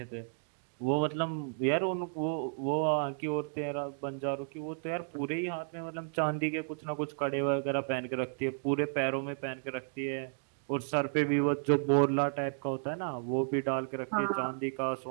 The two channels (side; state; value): left; silent; digital silence